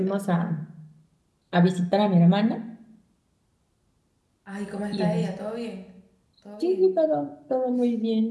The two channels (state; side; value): identical; both; correlation 1.00